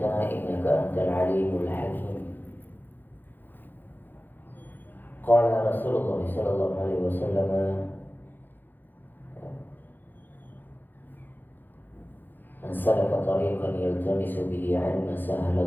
innaka antal 'alimul hakim. Qala Rasulullah sallallahu alaihi wasallam, man salaka tariqan yaltamisu bihi 'ilman sahala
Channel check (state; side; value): late; right; 0.090 ms